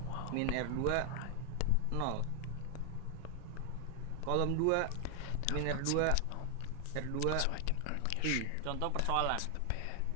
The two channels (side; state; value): both; different; correlation 0.00